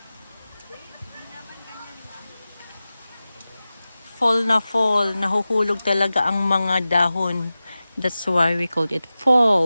Fall na fall. Nahuhulog talaga ang mga dahon. That's why we called it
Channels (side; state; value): both; inverted; correlation -0.95